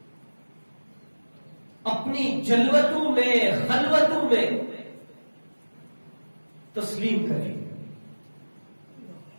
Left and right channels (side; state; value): both; inverted; correlation -1.00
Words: اپنی جلوتوں میں، خلوتوں میں تسلیم کریں۔